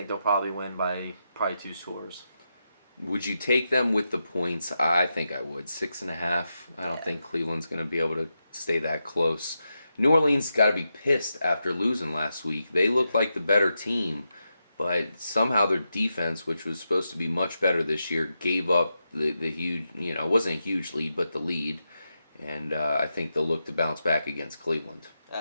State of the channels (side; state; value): both; inverted; correlation -0.87